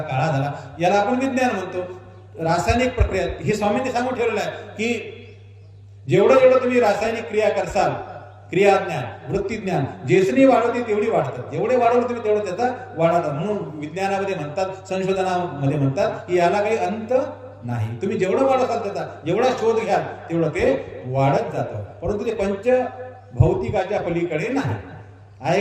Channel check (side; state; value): both; identical; correlation 1.00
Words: काळा झाला, याला आपण विज्ञान म्हणतो. रासायनिक प्रक्रिया हे स्वामींनी सांगून ठेवलेलं आहे की जेवढं तुम्ही रासायनिक क्रिया करसाल, क्रियाज्ञान, वृत्तीज्ञान जेसनी वाढवते तेवढी वाढतात. जेवढे वाढवलं तुम्ही तेवढं त्याचा वाढतात. म्हणून विज्ञानामध्ये म्हणतात, संशोधनामध्ये म्हणतात की याला काही अंत नाही. तुम्ही जेवढं वाढवताल त्याचा, जेवढा शोध घ्याल तेवढं ते वाढत जातं. परंतु ते पंचभौतिकाच्या पलीकडे नाही. आहे